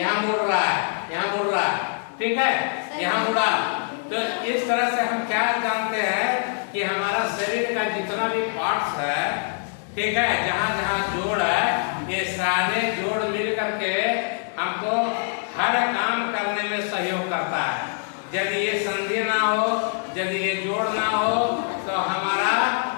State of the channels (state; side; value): silent; right; 62 dB below the other